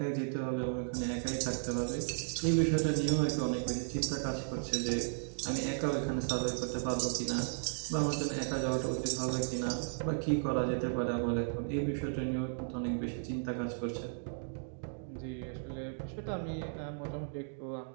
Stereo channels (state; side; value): silent; left; digital silence